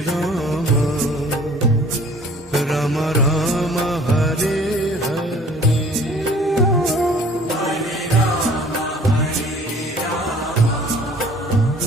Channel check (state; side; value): normal; both; correlation 0.52